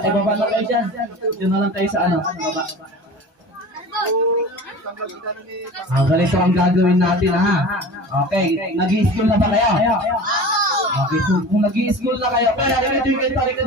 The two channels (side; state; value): left; late; 1.2 ms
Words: kayo dyan. Diyan na lang tayo sa ano. Baba. Ganito ang gagawin natin, ha? Okay, nag-i-school na ba kayo? Okay, so kung nag-i-school na kayo, pero dito.